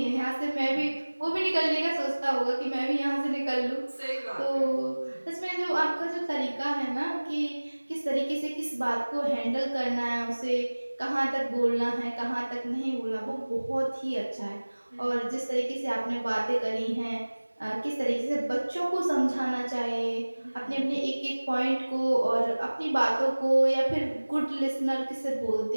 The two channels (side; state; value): both; inverted; correlation -1.00